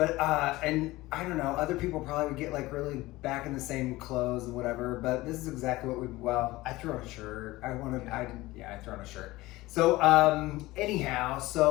and I don't know, other people probably would get like really back in the same clothes and whatever, but this is exactly what I threw on a shirt. I threw on a shirt. So anyhow,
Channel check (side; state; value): right; quieter; 19.0 dB